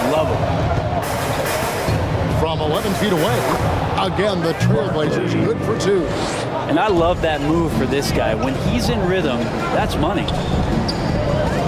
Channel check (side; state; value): both; identical; correlation 1.00